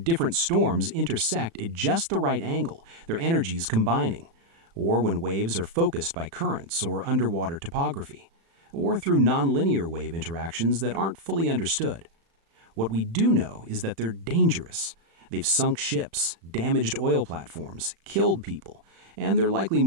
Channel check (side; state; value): left; late; 36 ms